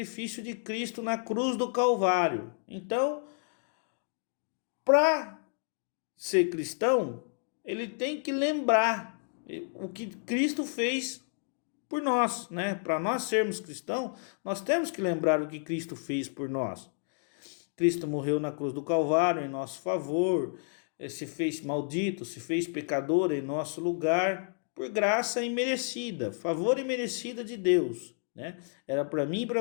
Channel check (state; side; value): silent; right; 57 dB below the other